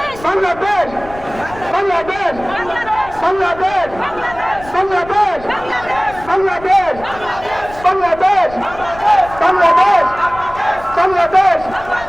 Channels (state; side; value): noise; left; rumble, 17 dB below the sound